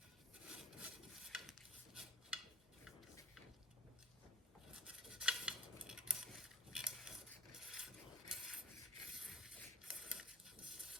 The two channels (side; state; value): both; normal; correlation 0.51